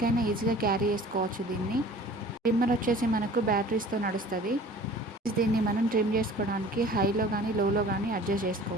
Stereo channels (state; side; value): normal; both; correlation 0.46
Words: ఈజీగా క్యారీ చేసుకోవచ్చు దీన్ని. ట్రిమ్మర్ వచ్చేసి మనకు బ్యాటరీస్తో నడుస్తుంది. దీన్ని మనం ట్రిమ్ చేసుకోవడానికి హైలో కానీ లోలో కానీ అడ్జస్ట్